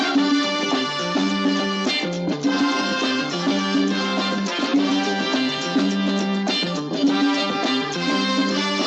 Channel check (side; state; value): both; identical; correlation 1.00